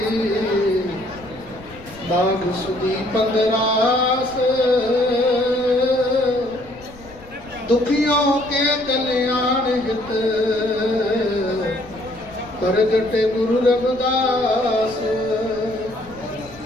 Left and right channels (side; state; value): left; noise; rumble, 21 dB below the sound